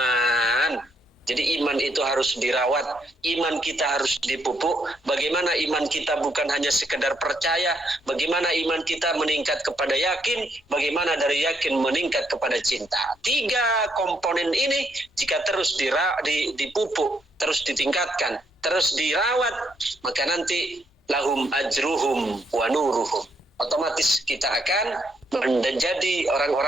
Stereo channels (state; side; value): normal; both; correlation 0.74